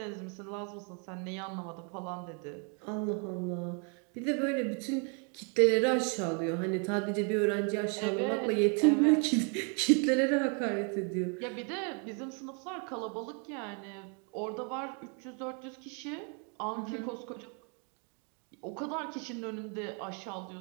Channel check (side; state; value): left; quieter; 37.9 dB